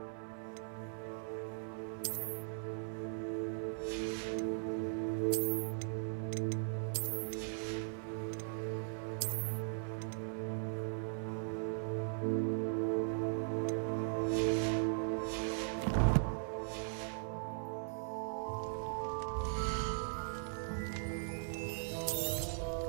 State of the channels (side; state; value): left; silent; 52 dB below the other